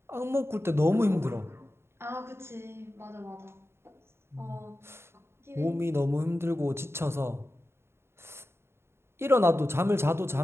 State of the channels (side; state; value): left; late; 0.12 ms